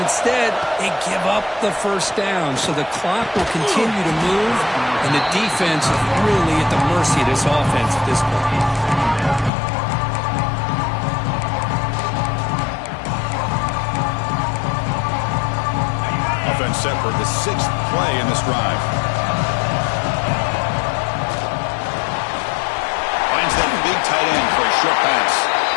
they give up the first down. So the clock will continue to move, and the defense is really at the mercy of this offense at this point. Offense set for the 6th play in this drive. Finds that big tight end for a short pass.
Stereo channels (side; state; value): right; drops out; at 9.5 s